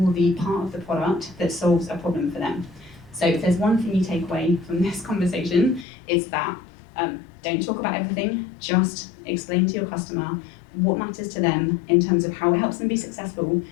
the part of the product that solves a problem for them. So if there's one thing you take away from this conversation, it's that don't talk about everything, just explain to your customer what matters to them in terms of how it helps them be successful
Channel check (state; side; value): drops out; right; at 5.9 s